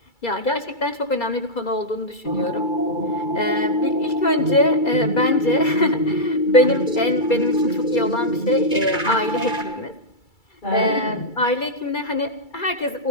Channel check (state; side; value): late; right; 2.3 ms